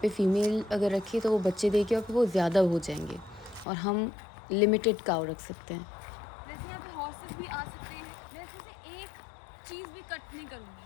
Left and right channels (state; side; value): drops out; right; at 3.7 s